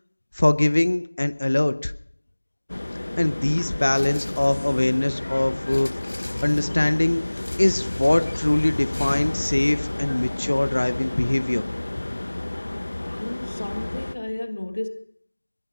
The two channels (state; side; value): inverted; both; correlation -1.00